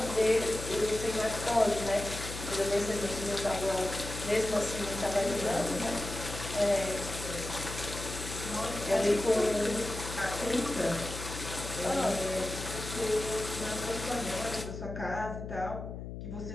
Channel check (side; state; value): left; noise; hum, 8 dB below the sound